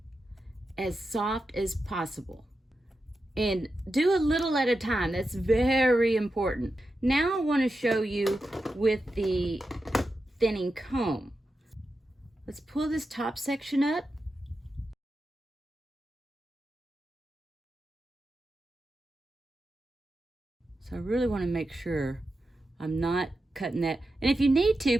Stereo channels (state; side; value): normal; both; correlation 0.90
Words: as soft as possible. And do a little at a time. That's very important. Now I want to show you with the thinning comb. Let's pull this top section up. So I really want to make sure I'm not cutting that. And if you need